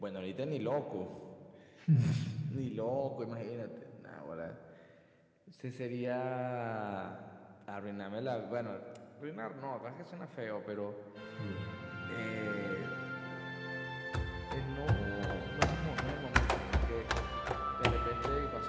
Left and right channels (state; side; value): identical; both; correlation 1.00